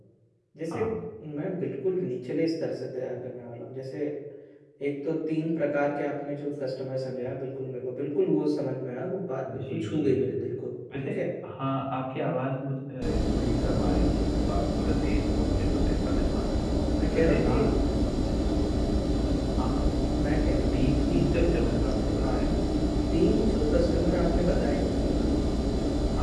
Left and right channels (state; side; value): identical; both; correlation 1.00